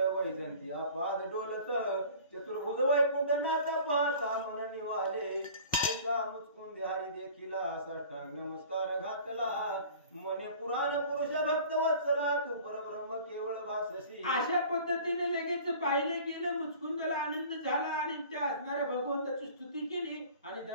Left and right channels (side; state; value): both; inverted; correlation -0.45